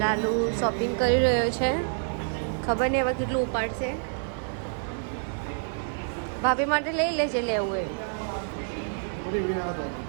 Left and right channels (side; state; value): left; silent; 60 dB below the other